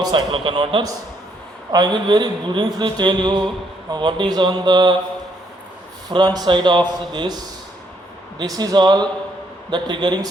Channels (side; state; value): both; normal; correlation 0.72